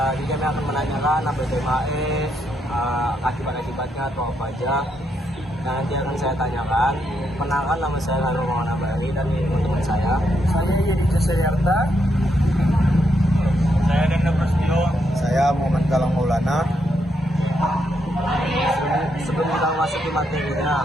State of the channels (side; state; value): both; normal; correlation 0.79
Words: Jadi kami akan menanyakan apa itu MHE, akibat-akibatnya atau apa aja. Nah, nanti akan saya tanyakan. Perkenalkan, nama saya Lalu Mawana Bari dan ini teman saya. Saya Yedi Jasayarta. Saya Denda Prasetyo. Saya Muhammad Galang Maulana. Sebelum kita masuk ke materinya,